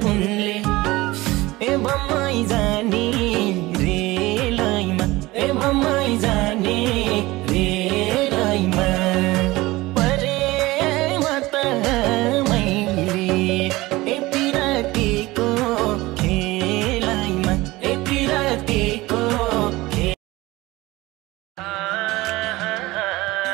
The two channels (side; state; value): left; quieter; 19.9 dB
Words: उनले ए बम्मै जाने रेलैमा ए बम्मै जाने रेलैमा परेमा त मैले ए पिरातीको खेलैमा ए पिरातीको